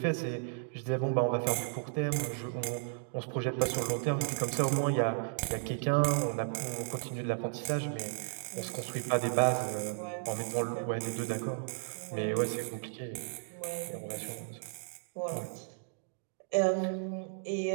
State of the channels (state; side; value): silent; left; digital silence